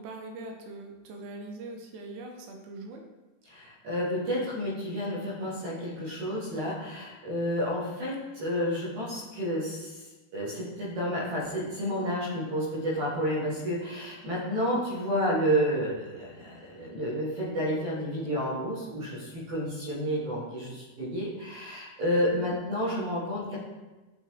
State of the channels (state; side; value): late; left; 18 ms